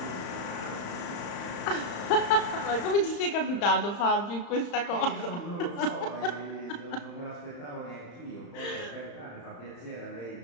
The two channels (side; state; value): right; late; 35 ms